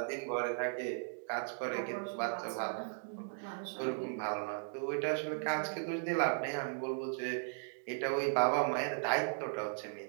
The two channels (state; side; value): silent; left; digital silence